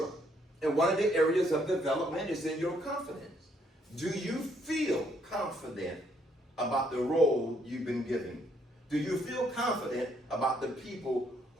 And one of the areas of development is in your confidence. Do you feel confident about the role you've been given? Do you feel confident about the people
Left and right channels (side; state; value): both; normal; correlation 0.69